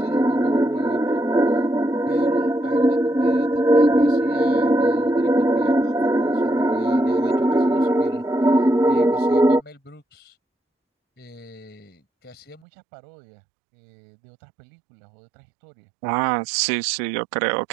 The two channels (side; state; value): left; drops out; at 12.6 s